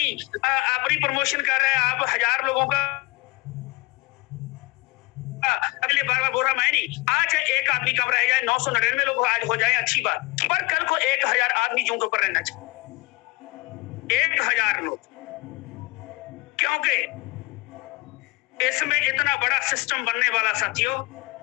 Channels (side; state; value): right; quieter; 23.2 dB